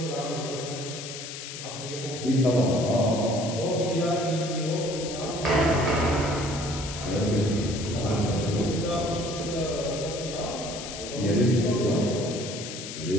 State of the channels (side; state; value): left; noise; hiss, 9 dB below the sound